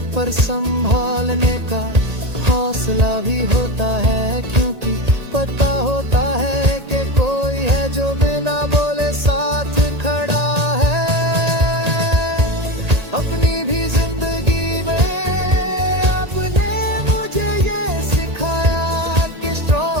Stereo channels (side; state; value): left; late; 1.8 ms